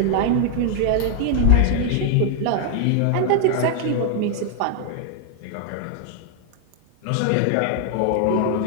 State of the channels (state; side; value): different; both; correlation 0.00